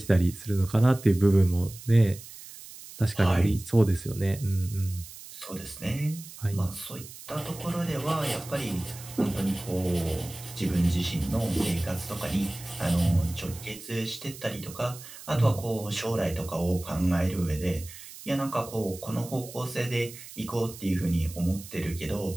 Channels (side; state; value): right; noise; hiss, 15 dB below the sound